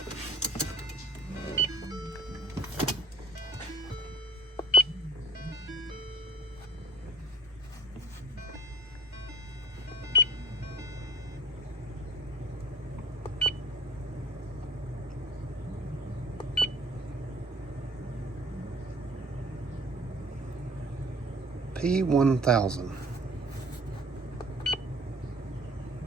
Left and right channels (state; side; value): normal; both; correlation 0.50